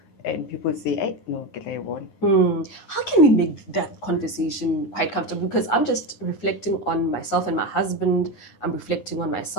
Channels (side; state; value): right; late; 9.6 ms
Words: And people say, hey, no, get I won. How can we make that conversation quite comfortable? Because I'm just reflecting on myself and my husband. I'm reflecting on